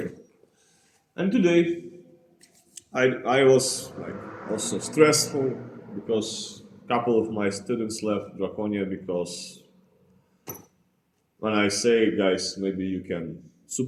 And today, I was like also stressful because a couple of my students left Draconia because when I say, guys, maybe you can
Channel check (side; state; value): both; identical; correlation 1.00